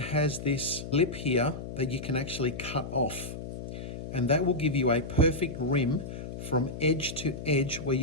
this lip here that you can actually cut off, and that will give you a perfect rim from edge to edge where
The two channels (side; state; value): left; noise; hum, 9 dB below the sound